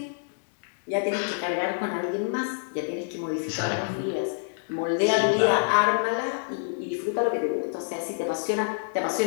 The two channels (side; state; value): right; silent; digital silence